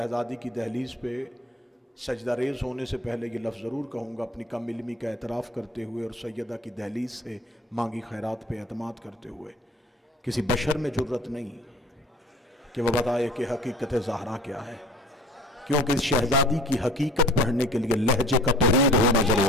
کی دہلیز پہ سجدہ ریز ہونے سے پہلے یہ لفظ ضرور کہوں گا، اپنی کم علمی کا اعتراف کرتے ہوئے اور سیدہ کی دہلیز سے مانگی خیرات پہ اعتماد کرتے ہوئے، کسی بشر میں جرت نہیں کہ وہ بتائے کہ حقیقت زہرا کیا ہے، کیونکہ اس شہزادی کی حقیقت پڑھنے کے لیے لہجے کا توحید ہونا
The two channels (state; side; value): normal; both; correlation 0.47